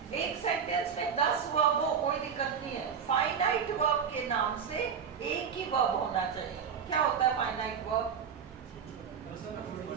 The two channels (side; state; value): left; quieter; 7.1 dB